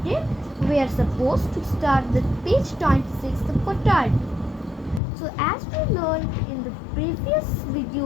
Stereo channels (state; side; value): drops out; right; at 5.0 s